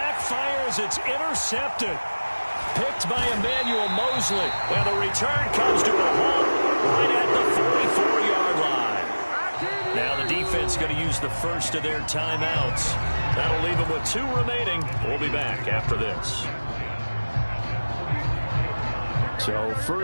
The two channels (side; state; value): both; inverted; correlation -1.00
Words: as it's intercepted. Picked by Emmanuel Mosley. And the return comes to a halt right at the 44-yard line. Now the defense going to use the first of their timeouts. That'll leave them with 2 remaining. We'll be back after this. So